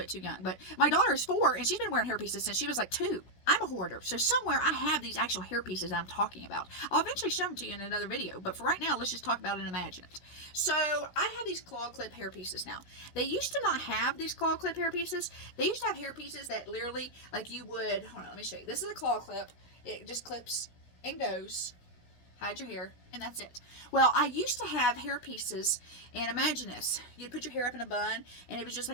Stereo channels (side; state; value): right; late; 17 ms